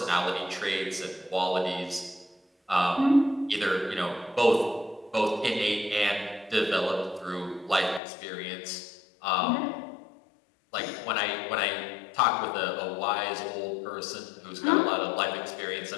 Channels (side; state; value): right; drops out; at 8.0 s